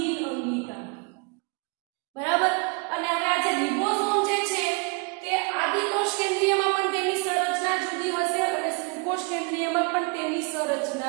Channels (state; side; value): quieter; left; 32.1 dB